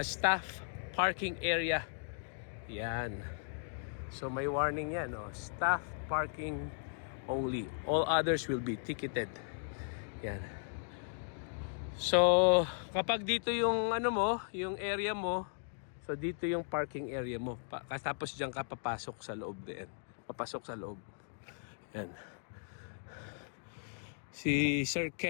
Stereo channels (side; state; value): right; silent; digital silence